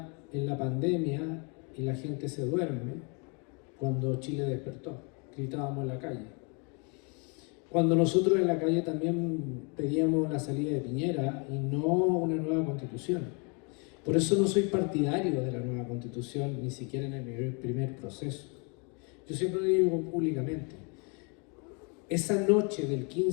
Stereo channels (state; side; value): quieter; right; 34.2 dB